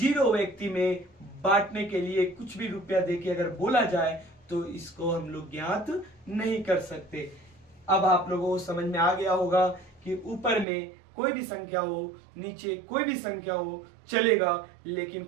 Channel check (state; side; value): drops out; left; at 10.7 s